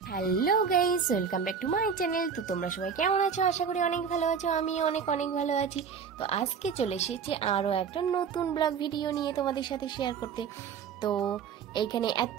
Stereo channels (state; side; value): quieter; left; 6.7 dB